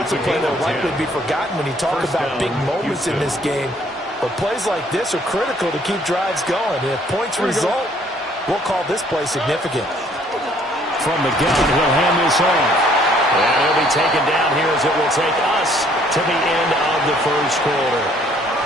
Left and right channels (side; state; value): both; normal; correlation 0.62